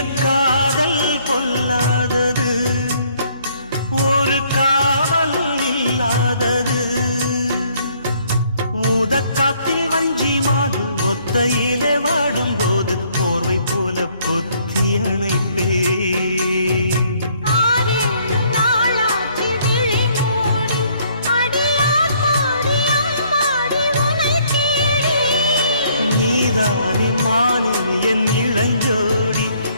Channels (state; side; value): inverted; both; correlation -0.65